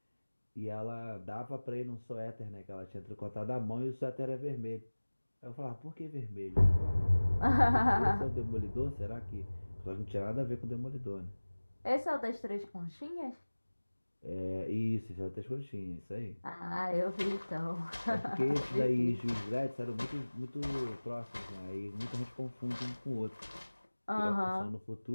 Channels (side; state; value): both; inverted; correlation -1.00